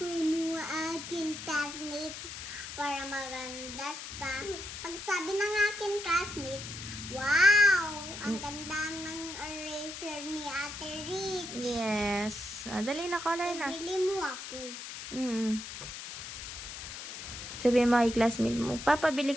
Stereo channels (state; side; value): noise; left; hiss, 9 dB below the sound